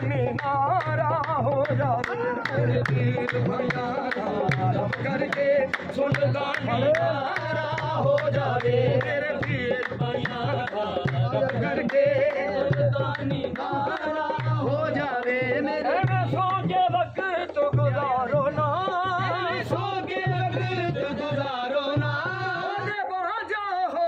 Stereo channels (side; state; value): both; identical; correlation 1.00